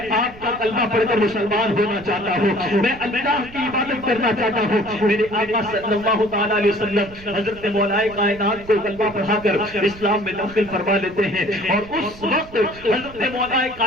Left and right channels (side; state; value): right; noise; rumble, 18 dB below the sound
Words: آپ کا کلمہ پڑھ کر مسلمان ہونا چاہتا ہوں, میں اللہ کی عبادت کرنا چاہتا ہوں. میرے آقا صلی اللہ تعالی علیہ وسلم حضرت مولا کائنات کو کلمہ پڑھا کر اسلام میں داخل فرما لیتے ہیں اور اس وقت حضرت مولا